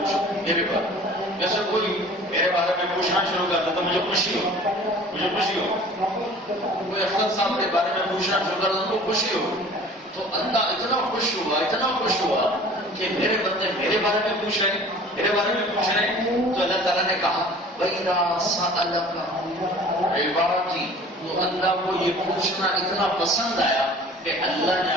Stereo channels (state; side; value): normal; both; correlation 0.46